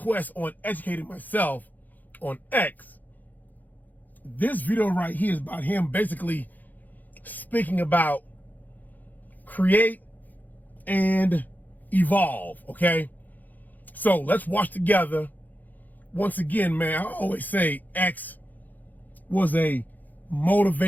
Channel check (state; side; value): late; right; 0.083 ms